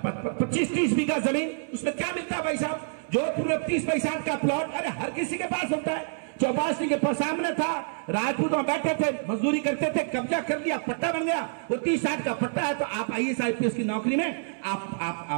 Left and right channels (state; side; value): silent; left; 60 dB below the other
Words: बीघा जमीन, उसमें क्या मिलता है भाई साहब? जोधपुर में 30 पैसा का प्लॉट, अरे हर किसी के पास होता है। चौपासी के पास सामने था, राजपूत वहां बैठे थे, मजदूरी करते थे, कब्जा कर लिया, पट्टा बन गया, वो 30-60 का पट्टा है। तो आप IAS IPS की नौकरी में